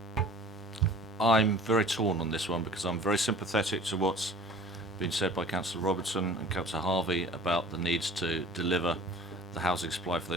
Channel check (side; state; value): both; normal; correlation 0.45